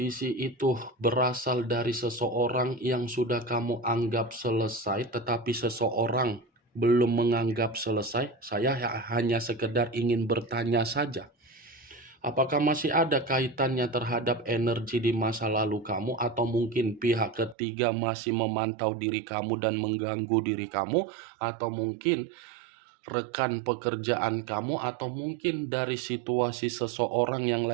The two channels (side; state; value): left; drops out; at 17.6 s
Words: itu berasal dari seseorang yang sudah kamu anggap selesai, tetapi seseorang belum menganggap selesai? Saya hanya sekedar ingin bertanya saja. Apakah masih ada kaitannya terhadap energi di masa lalu kamu, atau mungkin pihak ketiga masih memantau diri kamu dan mengganggu diri kamu, atau mungkin rekan pekerjaan kamu, atau mungkin dari situasi seseorang yang